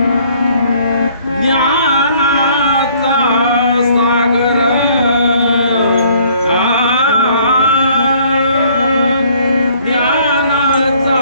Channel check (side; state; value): both; inverted; correlation -0.59